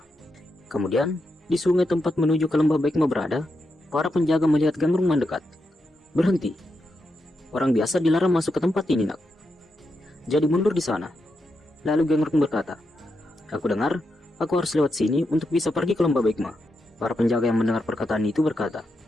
Kemudian, di sungai tempat menuju ke lembah Baekma berada, para penjaga melihat Gangrung mendekat. Berhenti. Orang biasa dilarang masuk ke tempat ini, nak. Jadi mundur di sana. Lalu Gangrung berkata, aku dengar, aku harus lewat sini untuk bisa pergi ke lembah Baekma. Para penjaga yang mendengar perkataan itu berkata,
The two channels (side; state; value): both; normal; correlation 0.85